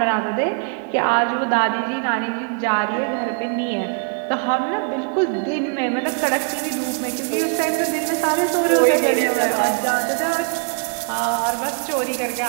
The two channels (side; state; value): left; quieter; 38.7 dB